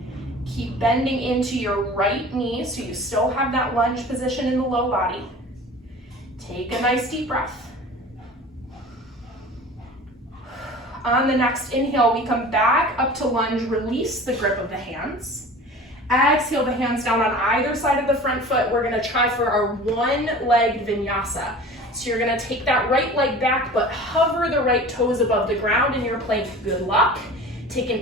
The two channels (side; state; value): both; normal; correlation 0.40